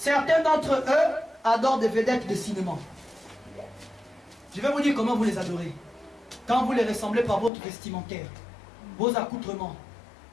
d'entre eux adorent des vedettes de cinéma. Je vais vous dire comment vous les adorez. Quand vous les ressemblez par votre vestimentaire, vos accoutrements,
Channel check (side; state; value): right; drops out; at 7.5 s